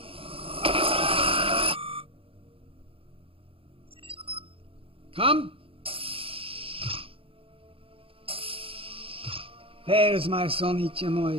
Come. There's my son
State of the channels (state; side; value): late; left; 0.27 ms